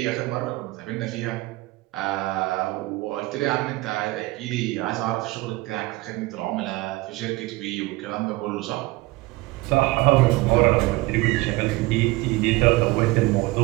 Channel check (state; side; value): quieter; left; 20.8 dB